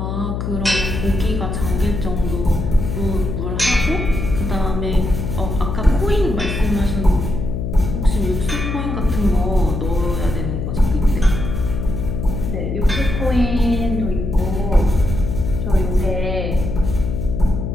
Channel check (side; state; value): left; noise; hum, 3 dB below the sound